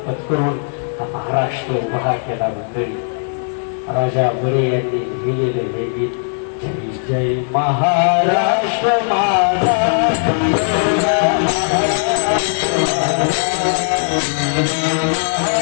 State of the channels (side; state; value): right; silent; digital silence